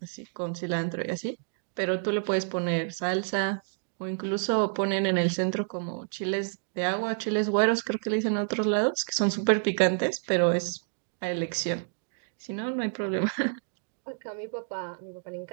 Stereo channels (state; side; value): silent; left; digital silence